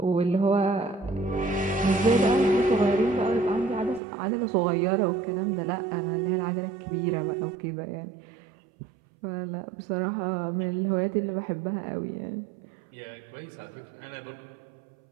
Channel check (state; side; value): drops out; left; at 4.0 s